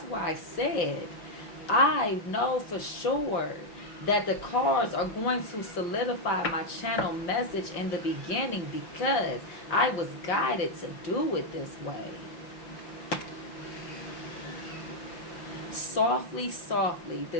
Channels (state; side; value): late; right; 5.6 ms